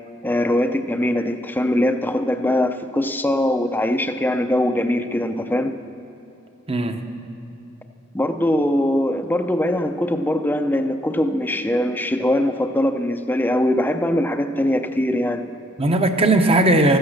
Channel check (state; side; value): normal; both; correlation 0.73